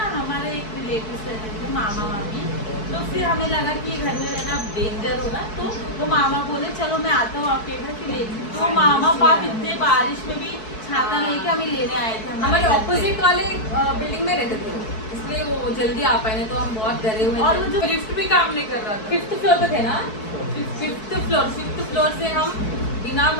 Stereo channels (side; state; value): right; late; 4.6 ms